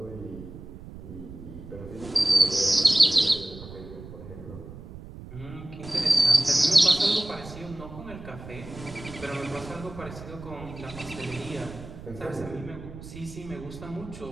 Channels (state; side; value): noise; right; rumble, 14 dB below the sound